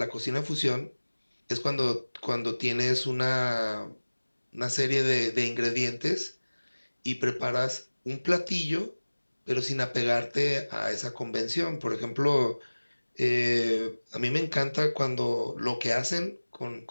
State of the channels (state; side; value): inverted; both; correlation -1.00